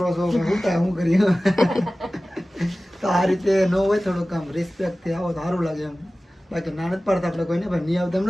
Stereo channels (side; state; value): both; normal; correlation 0.97